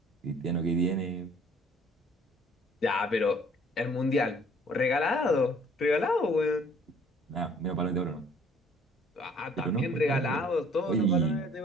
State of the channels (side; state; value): both; normal; correlation 0.57